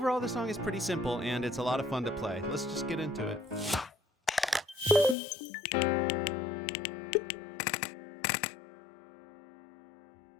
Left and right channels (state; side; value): drops out; right; at 5.2 s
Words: the song is pretty simple and it's a lot of fun to play. Let's just get into it.